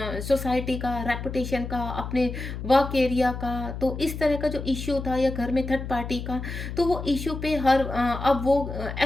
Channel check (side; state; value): left; noise; hum, 7 dB below the sound